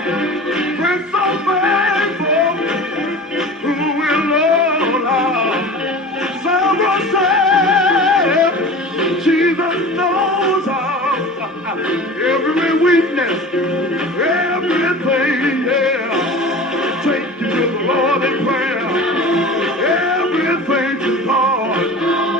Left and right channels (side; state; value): both; normal; correlation 0.36